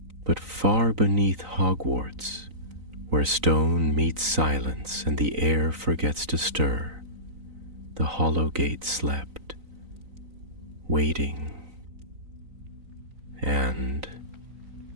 But far beneath Hogwarts, where stone meets silence and the air forgets to stir, the hollow gate slept, waiting and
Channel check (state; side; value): late; left; 3.9 ms